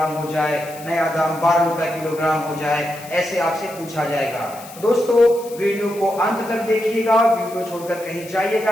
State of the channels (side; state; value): left; noise; hiss, 18 dB below the sound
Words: हो जाए, नया दाम 12 रुपया किलोग्राम हो जाए। ऐसे आपसे पूछा जाएगा। तो दोस्तों, वीडियो को अंत तक देखिएगा, वीडियो छोड़कर कहीं